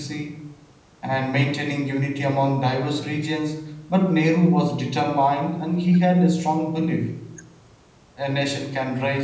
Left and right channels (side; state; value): both; identical; correlation 1.00